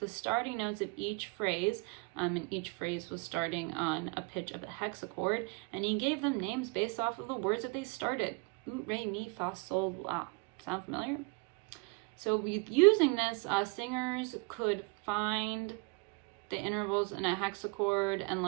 starting notes of each phrase, and each phrase was starting on a pitch of the hexachord, and he gave them names based off of the words that they started. Ut, re, mi, fa, sol, la. Sound familiar? So using this, singers could find the intervals in a hexachord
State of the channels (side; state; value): left; quieter; 29.8 dB